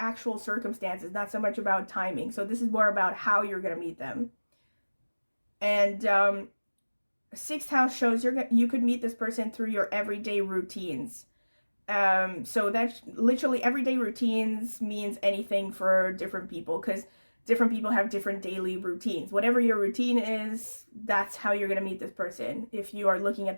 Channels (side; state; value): both; inverted; correlation -1.00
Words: circumstances, not so much about timing. So this is more about how you're going to meet them. And 6th house shows you could meet this person through your everyday routines. So that's literally everyday routines means anything for different people, because different people have different daily routines. Whatever your routine is, that's how you're going to meet this person if you are looking at